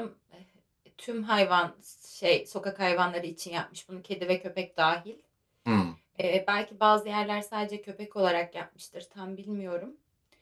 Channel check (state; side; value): identical; both; correlation 1.00